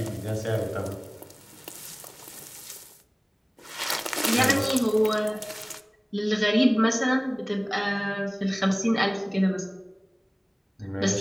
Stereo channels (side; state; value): both; identical; correlation 1.00